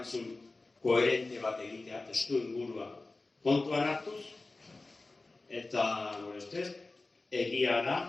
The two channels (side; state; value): right; quieter; 3.3 dB